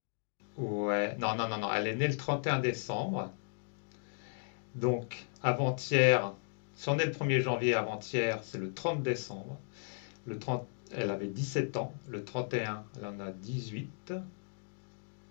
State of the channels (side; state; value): right; silent; digital silence